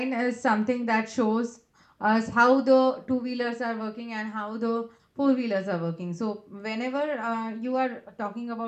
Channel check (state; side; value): identical; both; correlation 1.00